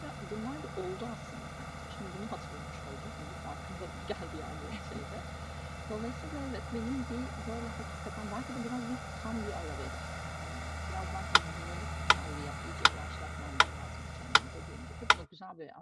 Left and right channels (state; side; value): identical; both; correlation 1.00